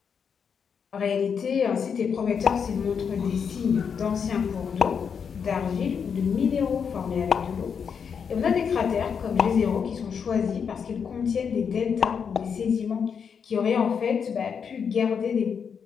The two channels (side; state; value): right; quieter; 6.7 dB